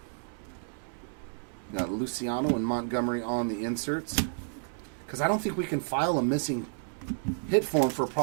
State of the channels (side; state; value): left; silent; digital silence